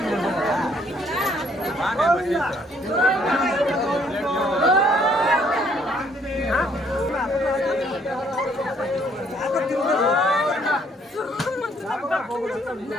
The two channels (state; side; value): normal; both; correlation 0.64